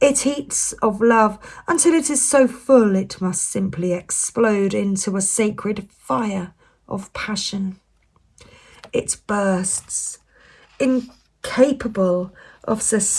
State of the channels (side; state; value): both; identical; correlation 1.00